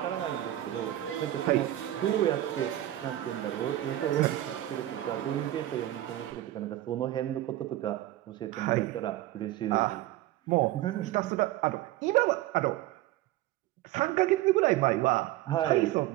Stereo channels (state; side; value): quieter; left; 14.7 dB